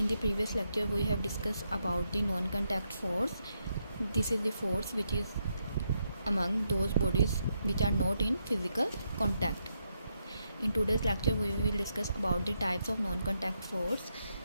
the previous lecture we have discussed about the non-contact force. This is the force which is among those bodies which are not in physical contact. In today's lecture we will discuss about the types of non-contact force.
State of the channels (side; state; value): both; inverted; correlation -0.81